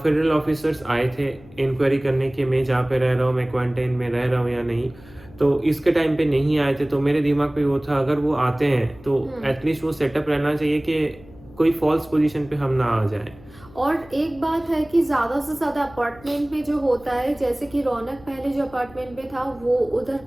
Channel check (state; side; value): noise; left; hum, 22 dB below the sound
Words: ऑफिसर्स आए थे इंक्वायरी करने के मैं जहाँ पे रह रहा हूँ, मैं क्वारंटाइन में रह रहा हूँ या नहीं. तो इसके टाइम पे नहीं आए थे, तो मेरे दिमाग पे वो था अगर वो आते हैं तो एटलीस्ट वो सेटअप रहना चाहिए कि कोई फॉल्स पोजीशन पे हम ना आ जाए. और एक बात है कि ज़्यादा से ज़्यादा अपार्टमेंट में जो होता है, जैसे कि रौनक पहले जो अपार्टमेंट में था वो उधर